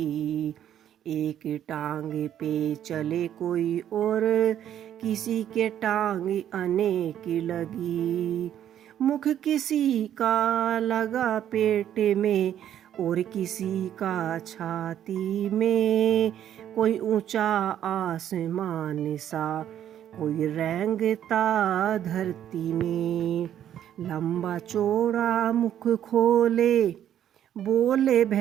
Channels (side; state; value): left; quieter; 10.6 dB